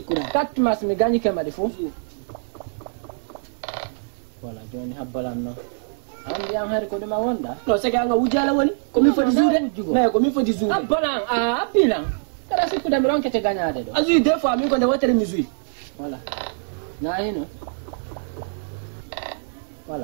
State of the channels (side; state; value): left; silent; digital silence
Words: kat mas mi ganyi ke madi fu wala joni habbalan no andi am hari ko dum wonda no sege anga wujala woni ko mi fodi zude me ko mi fodi zude habbalan a apilan kada sikuda mi ronkete ganyade do azu des fois mi ko de wotere mi zui wala na hino